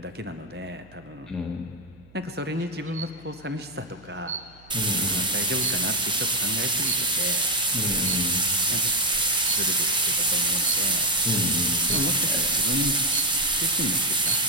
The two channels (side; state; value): right; noise; hum, 26 dB below the sound